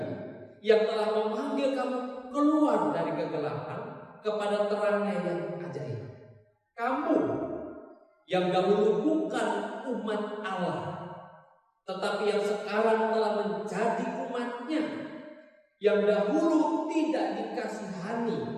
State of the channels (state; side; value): identical; both; correlation 1.00